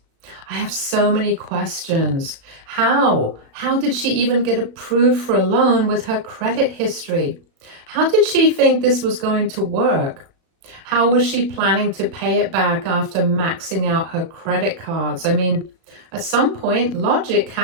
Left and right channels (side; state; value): left; late; 36 ms